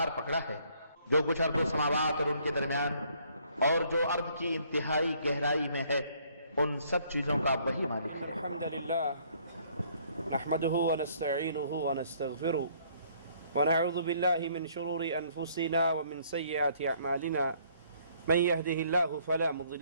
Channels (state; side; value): inverted; both; correlation -0.63